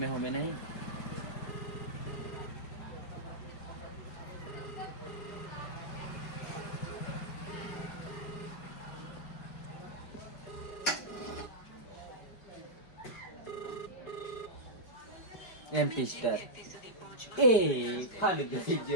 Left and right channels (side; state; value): right; late; 5.1 ms